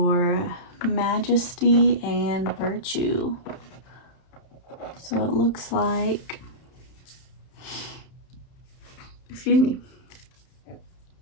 majesty and virtue. So it looks like, excuse me,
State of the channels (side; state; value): right; late; 31 ms